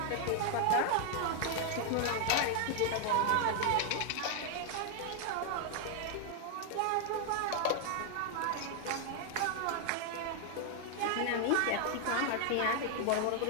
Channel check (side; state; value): both; different; correlation 0.00